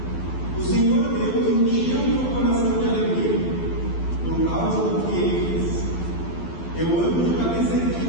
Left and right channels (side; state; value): right; late; 12 ms